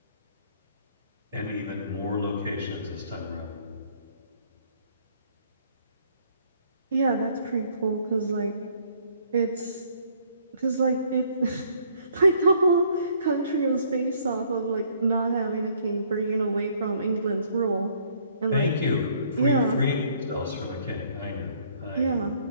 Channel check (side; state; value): both; inverted; correlation -0.63